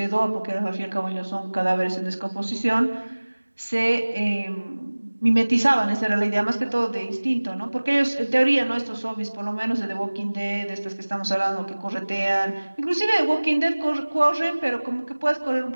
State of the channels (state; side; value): inverted; both; correlation -1.00